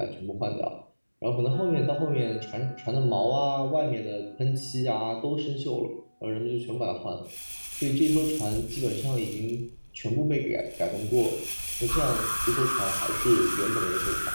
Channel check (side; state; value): both; inverted; correlation -1.00